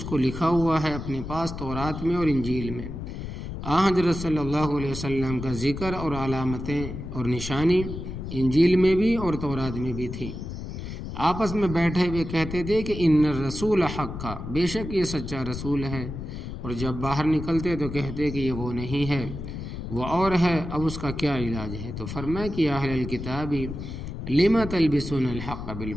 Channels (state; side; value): noise; left; rumble, 8 dB below the sound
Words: کو لکھا ہوا ہے اپنے پاس تورات میں اور انجیل میں۔ حضرت صلی اللہ علیہ وسلم کا ذکر اور علامتیں اور نشانی انجیل میں بھی اور تورات میں بھی تھی۔ آپس میں بیٹھے ہوئے کہتے تھے کہ ان الرسول حق، بے شک یہ سچا رسول ہے، اور جب باہر نکلتے تو کہتے کہ یہ وہ نہیں ہے، وہ اور ہے، اب اس کا کیا علاج ہے؟ تو فرمایا کہ اہل الکتاب لما تلبسون الحق